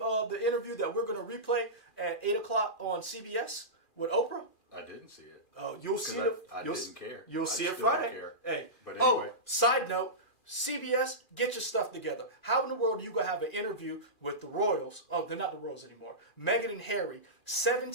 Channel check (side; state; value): right; late; 2.4 ms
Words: interview that we're going to replay at 8 o'clock on CBS with Oprah? I didn't see it. You'll see it. I didn't care. You'll see it still don't Friday. care. Hey. But anyway. Side note, CBS, get your stuff together. How in the world are you going to have an interview with the Royals? Oh, they're not the Royals anymore. Meghan and Harry.